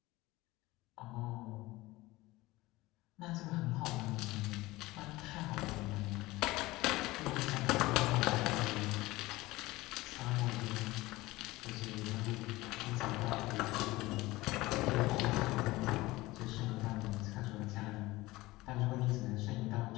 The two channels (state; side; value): quieter; right; 19.7 dB